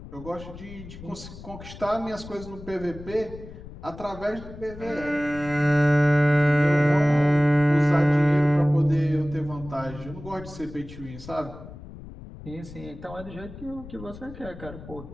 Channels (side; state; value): left; noise; rumble, 15 dB below the sound